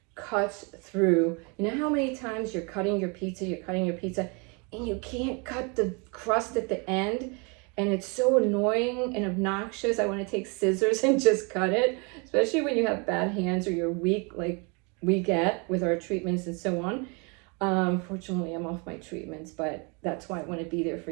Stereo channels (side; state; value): left; quieter; 32.4 dB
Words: cuts through. You know how many times you're cutting your pizza, and you can't cut the crust at the end? And it's so annoying and obnoxious. I want to take scissors and just cut it, especially when you have bad hands or you're weak, like we get with our treatments and so on. Fortunately, I'm off my treatments, but that's why I want to be there